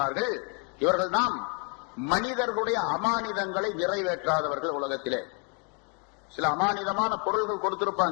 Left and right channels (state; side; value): quieter; right; 36.5 dB